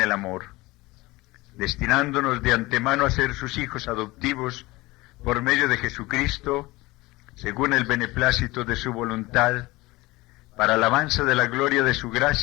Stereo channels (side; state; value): right; quieter; 20.8 dB